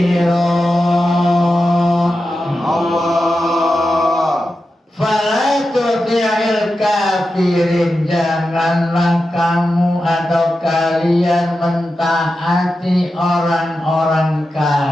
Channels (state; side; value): normal; both; correlation 0.91